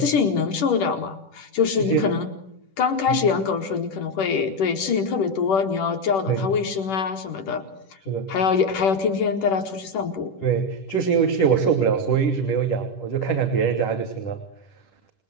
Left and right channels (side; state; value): right; late; 10 ms